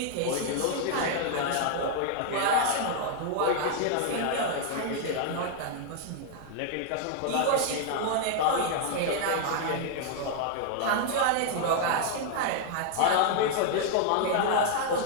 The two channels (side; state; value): both; different; correlation 0.00